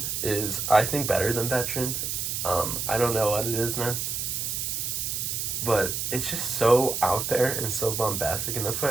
is, I think, better than Veteran. I don't know what it is, man. But it's just so out there and so bombastic, and that's what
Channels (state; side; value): noise; right; hiss, 2 dB below the sound